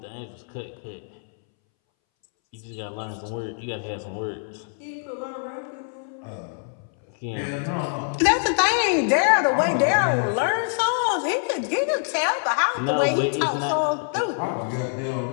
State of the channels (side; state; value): right; silent; 62 dB below the other